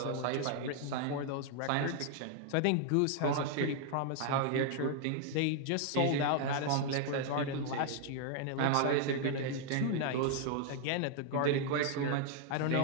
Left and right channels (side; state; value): both; different; correlation 0.00